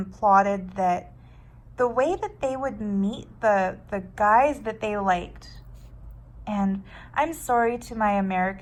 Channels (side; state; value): both; identical; correlation 1.00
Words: plotted that the way that they would meet the guys that they liked, and I'm sorry to my